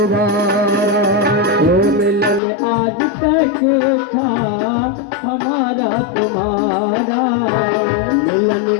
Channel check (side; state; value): right; drops out; at 2.4 s